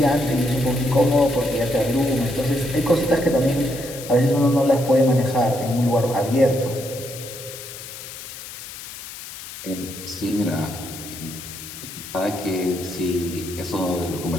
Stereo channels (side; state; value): left; noise; hiss, 12 dB below the sound